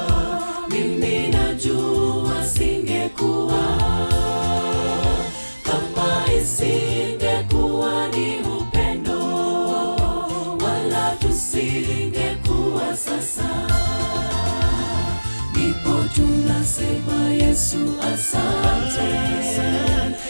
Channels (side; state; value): both; inverted; correlation -1.00